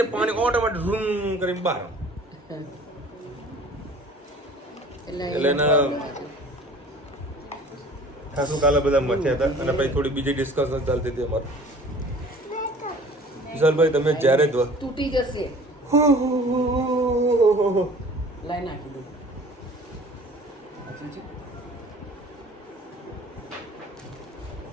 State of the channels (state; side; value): normal; both; correlation 0.48